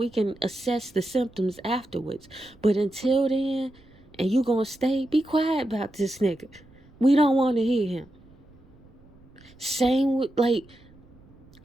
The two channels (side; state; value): right; noise; rumble, 26 dB below the sound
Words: can assess the symptoms afterwards. But until then, and you gonna stay, be quiet about this nigga. We don't want to hear him. Same with, like,